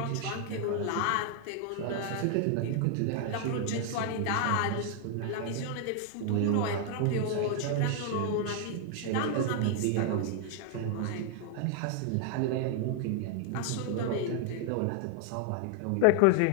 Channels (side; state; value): both; different; correlation 0.00